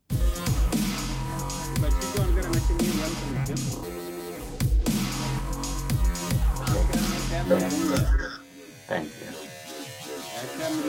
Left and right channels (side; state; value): both; identical; correlation 1.00